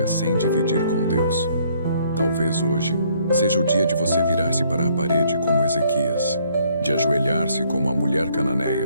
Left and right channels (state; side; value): inverted; both; correlation -0.65